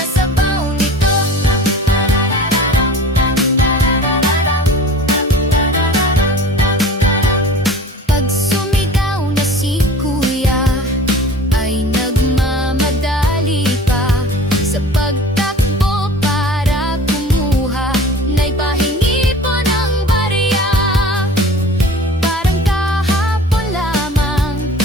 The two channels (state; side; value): normal; both; correlation 0.41